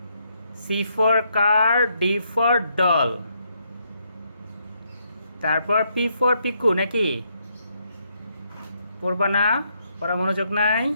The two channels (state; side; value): inverted; both; correlation -0.75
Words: C for car, D for doll, তারপর পি ফর পিকু নাকি? পড়বা না? পড়া মনোযোগ নাই?